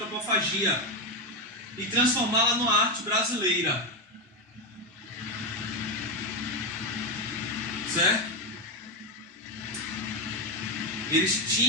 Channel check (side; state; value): both; normal; correlation 0.09